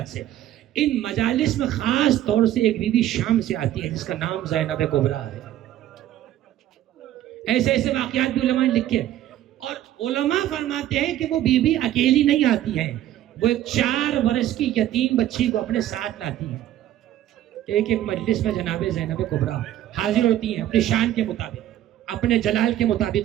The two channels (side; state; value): left; quieter; 12.7 dB